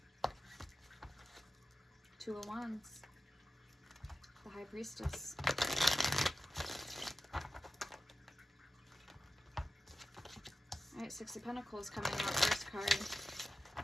Two of Wands. The High Priestess. Alright, Six of Pentacles coming out first card.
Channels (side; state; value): both; normal; correlation 0.94